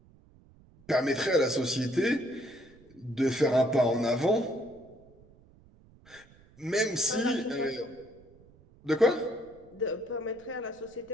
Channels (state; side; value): noise; right; rumble, 26 dB below the sound